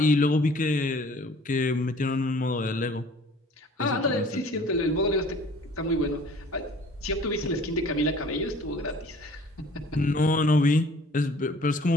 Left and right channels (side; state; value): both; normal; correlation 0.51